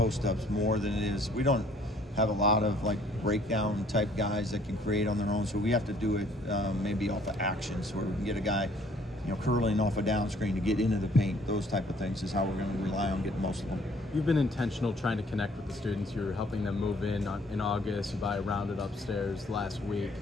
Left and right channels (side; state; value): both; normal; correlation 0.60